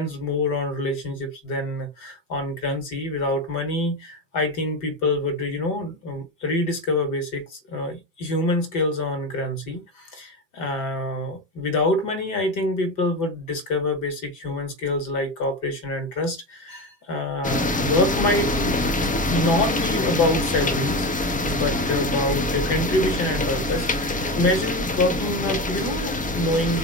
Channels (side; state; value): both; normal; correlation 0.20